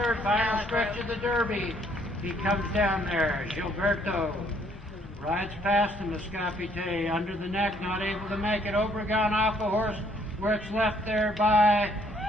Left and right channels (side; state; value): both; normal; correlation 0.65